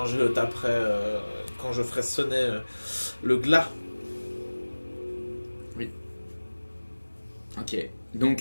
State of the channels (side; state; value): both; inverted; correlation -1.00